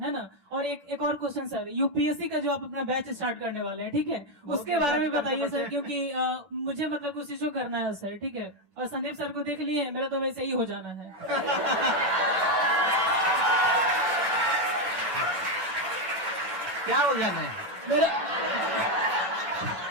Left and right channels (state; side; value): late; left; 10 ms